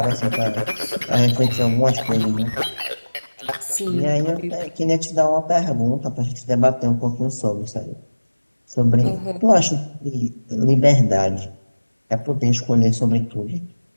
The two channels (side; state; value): both; inverted; correlation -1.00